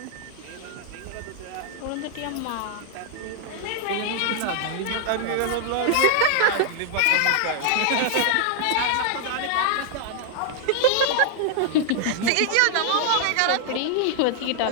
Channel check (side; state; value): both; different; correlation 0.00